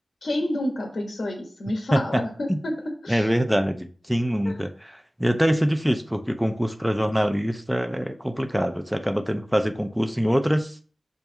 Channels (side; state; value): both; normal; correlation 0.98